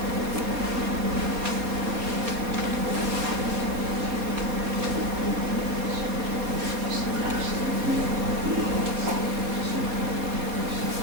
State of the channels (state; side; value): late; left; 4.3 ms